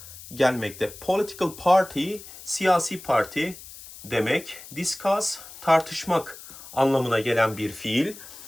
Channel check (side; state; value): left; noise; hiss, 16 dB below the sound